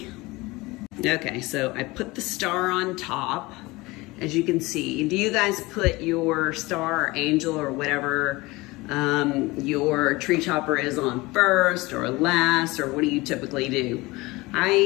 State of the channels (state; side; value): quieter; right; 22.0 dB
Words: Okay, so I put the star on top, as you can see. Do you guys put your star or angel or whatever your tree topper is on first or last, or what do you typically do?